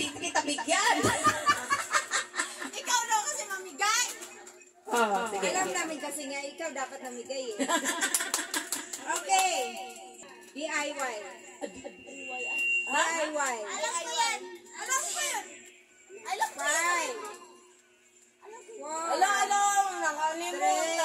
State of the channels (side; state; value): both; identical; correlation 1.00